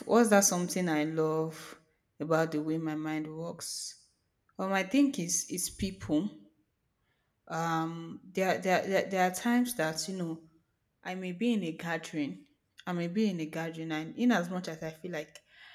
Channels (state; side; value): identical; both; correlation 1.00